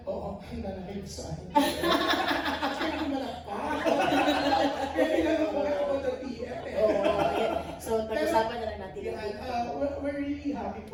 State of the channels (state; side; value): identical; both; correlation 1.00